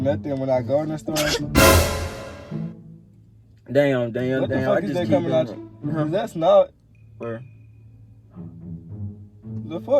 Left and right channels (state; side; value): identical; both; correlation 1.00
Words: when I go in the store. Damn. What the I fuck is just that keep coming out? going. Cause that's not Where? the